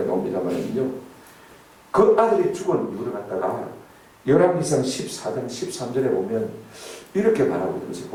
나옵니다만요, 그 아들이 죽은 이유를 갖다가 열왕기상 14장 13절에 보면 이렇게 말하고 있는 것을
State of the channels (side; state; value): both; identical; correlation 1.00